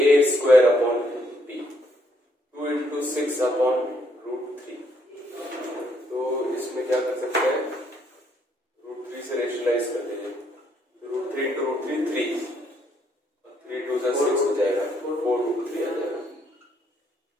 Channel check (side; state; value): both; normal; correlation 0.71